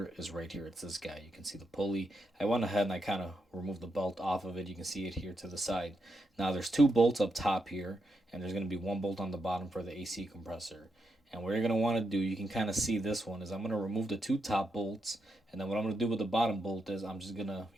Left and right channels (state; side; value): normal; both; correlation 0.83